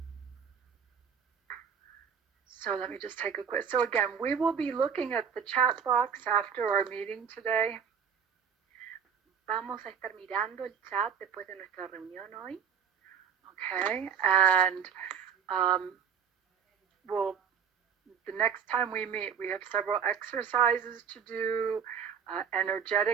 So let me just take a quick. So again, we will be looking at the chat box after our meeting today. Vamos a estar mirando el chat después de nuestra reunión hoy. Okay. And the next time we meet, we have several exercises to do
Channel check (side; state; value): left; quieter; 7.3 dB